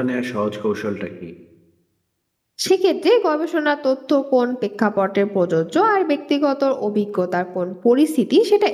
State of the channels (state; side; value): identical; both; correlation 1.00